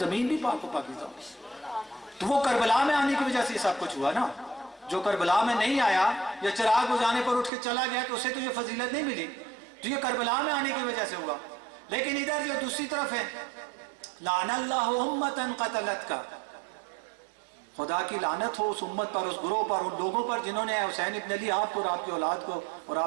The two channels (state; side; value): drops out; left; at 7.5 s